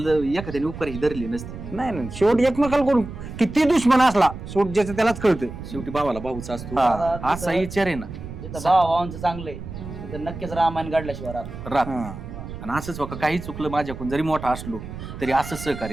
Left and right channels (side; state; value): right; noise; rumble, 10 dB below the sound